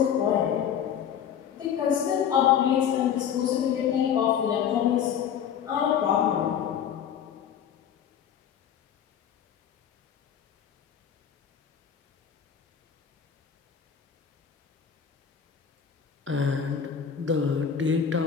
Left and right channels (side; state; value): right; quieter; 8.5 dB